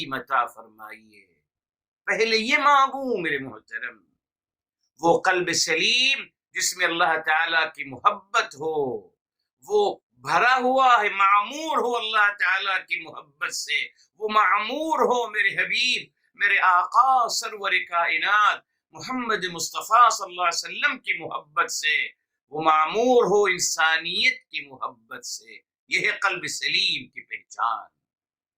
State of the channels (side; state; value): both; identical; correlation 1.00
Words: عطا فرمائیے۔ پہلے یہ مانگوں میرے محترم، وہ قلب سلیم جس میں اللہ تعالیٰ کی محبت ہو، وہ بھرا ہوا ہے، معمور ہو اللہ تعالیٰ کی محبت سے، وہ معمور ہو میرے حبیب میرے آقا سرور کائنات محمد مصطفیٰ صلی اللہ علیہ وسلم کی محبت سے، وہ معمور ہو انسانیت کی محبت سے۔ یہ ہے قلب سلیم کی پہچان۔